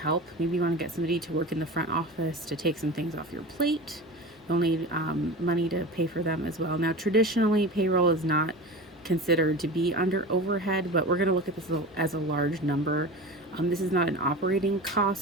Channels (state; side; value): normal; both; correlation 0.31